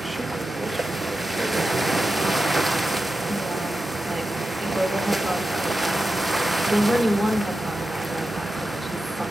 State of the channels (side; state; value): both; normal; correlation 0.91